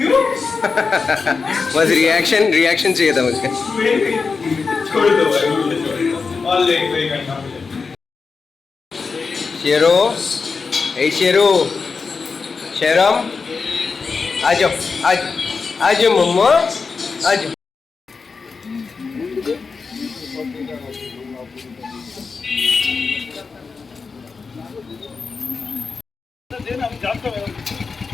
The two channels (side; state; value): right; quieter; 4.8 dB